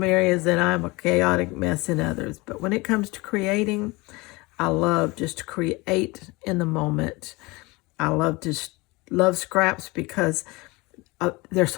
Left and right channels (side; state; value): right; quieter; 24.0 dB